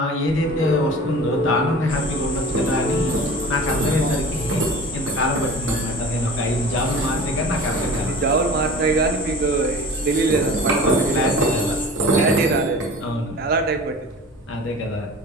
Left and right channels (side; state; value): both; normal; correlation 0.39